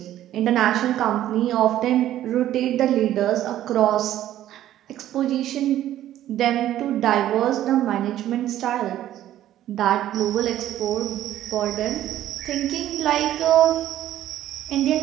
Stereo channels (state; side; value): quieter; left; 12.7 dB